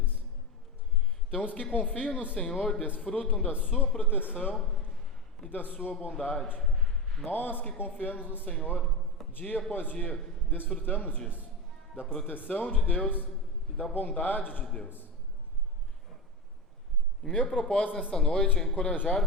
Então, os que confiam no Senhor desfrutam da sua proteção e da sua bondade. Nós que confiamos no Senhor, dia após dia, desfrutamos disso, da proteção de Deus e da bondade de Deus. E meu propósito nesta noite é encorajar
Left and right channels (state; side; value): normal; both; correlation 0.17